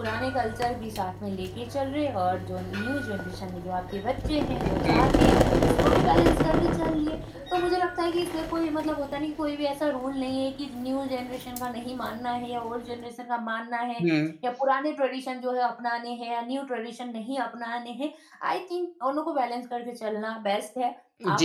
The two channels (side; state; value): both; identical; correlation 1.00